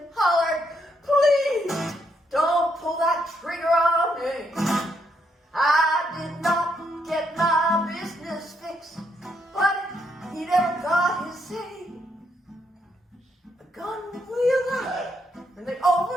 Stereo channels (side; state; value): both; normal; correlation 0.76